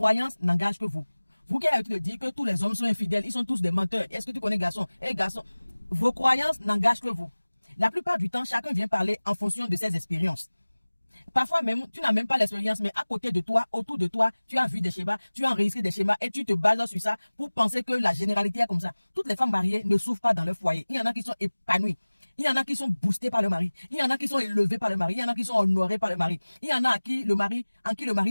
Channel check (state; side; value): inverted; both; correlation -1.00